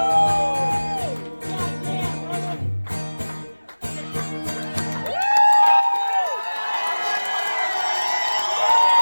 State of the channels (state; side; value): inverted; both; correlation -1.00